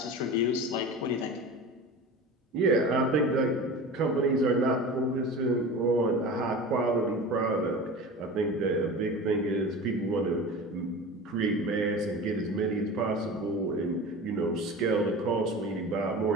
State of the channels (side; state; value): both; normal; correlation 0.33